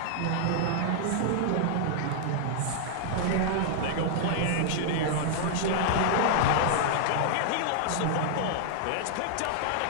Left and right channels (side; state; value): both; different; correlation -0.01